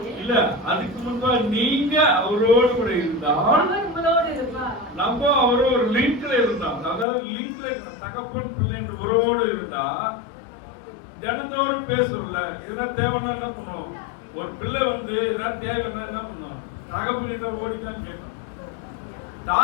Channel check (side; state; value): right; drops out; at 7.1 s